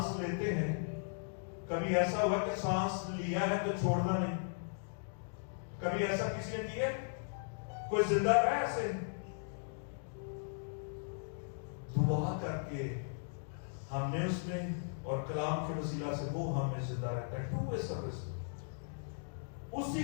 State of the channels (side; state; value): right; silent; digital silence